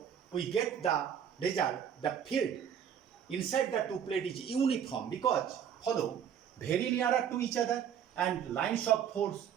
we get the result, the field inside the two plates is uniform, because follow, very nearer to each other, and lines of force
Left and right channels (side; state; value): left; quieter; 8.7 dB